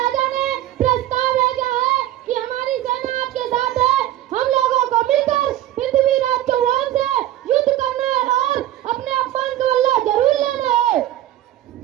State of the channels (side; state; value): left; quieter; 13.4 dB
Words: ने प्रस्ताव भेजा है कि हमारी सेना आपके साथ है। हम लोगों को मिलकर पृथ्वीराज चौहान से युद्ध करना है और अपने अपमान का बदला जरूर लेना है।